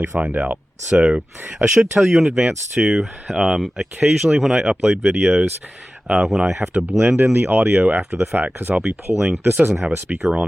find out. So I should tell you in advance too, occasionally when I upload videos, when I have to blend in the audio after the fact, because I'll be pulling, this doesn't have a speaker on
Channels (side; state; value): both; normal; correlation 0.96